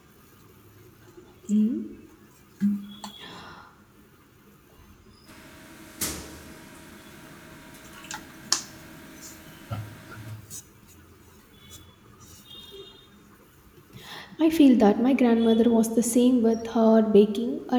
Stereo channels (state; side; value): identical; both; correlation 1.00